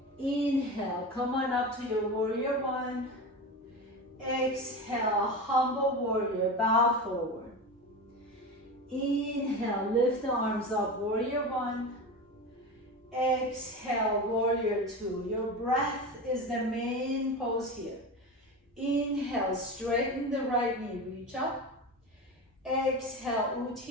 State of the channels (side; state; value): both; normal; correlation 0.25